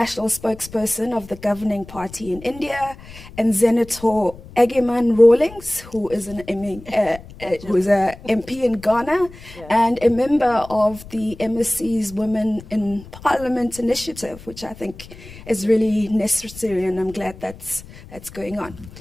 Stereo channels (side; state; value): left; noise; rumble, 18 dB below the sound